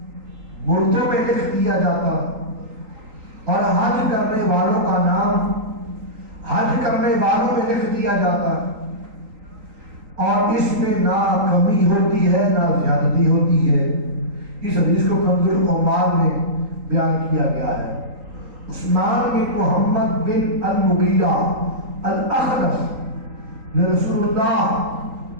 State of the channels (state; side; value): late; left; 3.8 ms